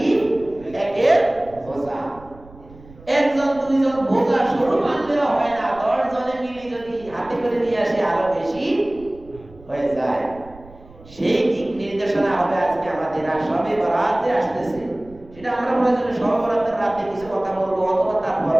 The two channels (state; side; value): noise; right; rumble, 22 dB below the sound